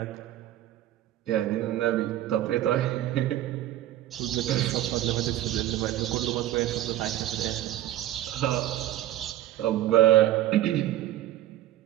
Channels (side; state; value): left; quieter; 13.7 dB